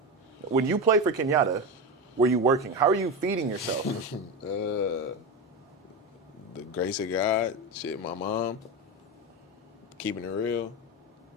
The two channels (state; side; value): normal; both; correlation 0.19